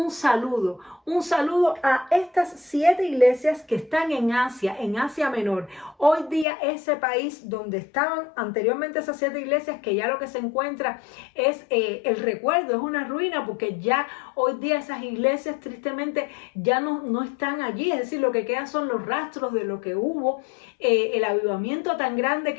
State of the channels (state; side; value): drops out; right; at 6.5 s